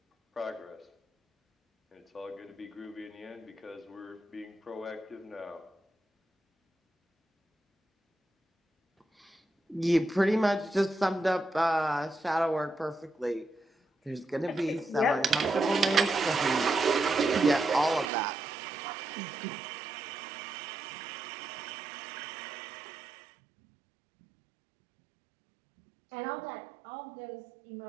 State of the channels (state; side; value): drops out; left; at 18.1 s